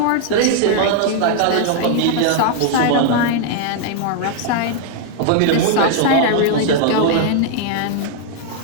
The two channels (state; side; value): different; both; correlation 0.00